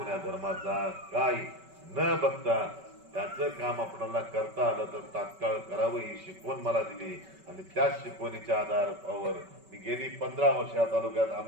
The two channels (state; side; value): late; left; 5.2 ms